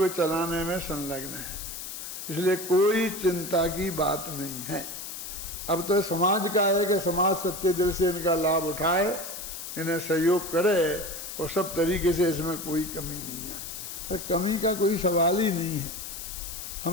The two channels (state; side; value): noise; left; hiss, 8 dB below the sound